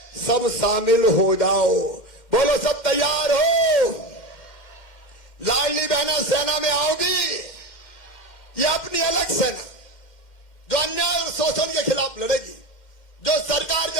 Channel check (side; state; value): right; late; 2.1 ms